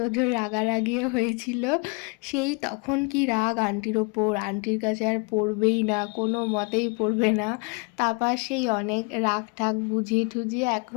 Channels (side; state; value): right; quieter; 31.0 dB